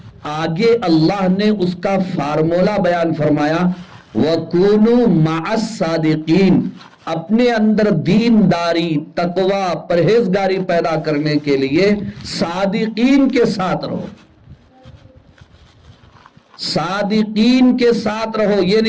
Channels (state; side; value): identical; both; correlation 1.00